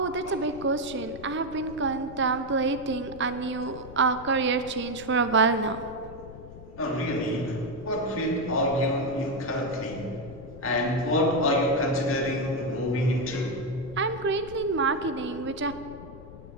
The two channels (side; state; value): left; noise; rumble, 15 dB below the sound